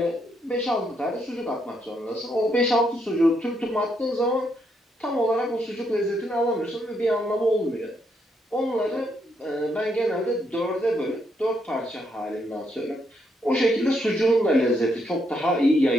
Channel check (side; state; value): both; normal; correlation 0.76